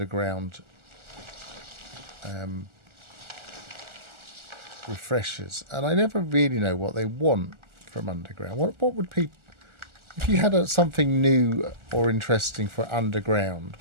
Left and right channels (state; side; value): late; left; 1.4 ms